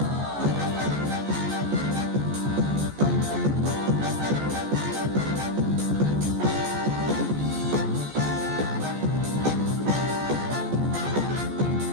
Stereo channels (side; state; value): left; late; 14 ms